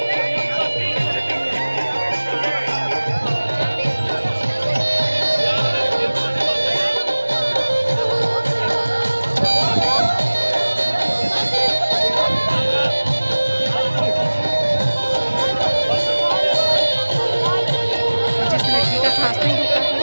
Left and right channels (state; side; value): inverted; both; correlation -1.00